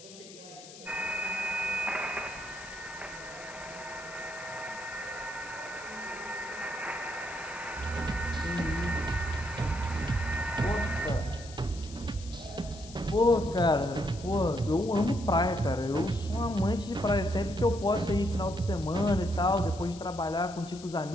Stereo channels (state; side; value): noise; left; hiss, 17 dB below the sound